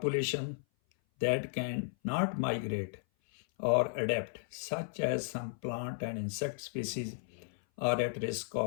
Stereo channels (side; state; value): right; silent; 55 dB below the other